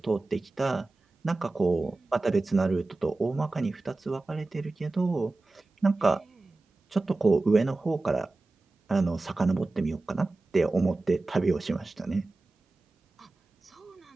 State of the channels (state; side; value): quieter; left; 3.2 dB